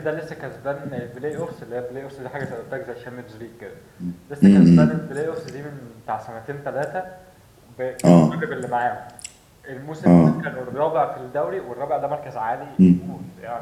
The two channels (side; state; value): both; identical; correlation 1.00